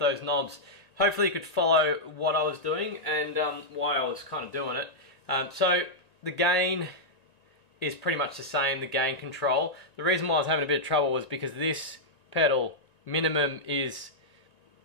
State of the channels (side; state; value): right; late; 1.9 ms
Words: knobs. Hopefully you could follow what I was doing and why I was kind of doing it. So the gain is pretty much the same, the gain control. The reason why I was having a bit of trouble was because this pedal, minimum is